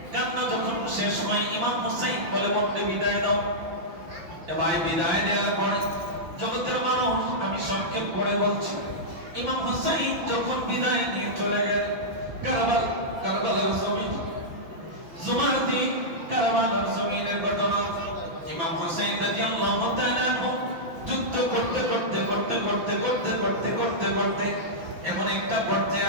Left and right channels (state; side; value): late; left; 6.0 ms